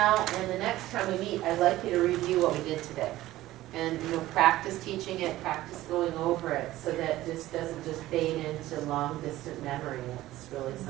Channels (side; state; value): left; quieter; 15.9 dB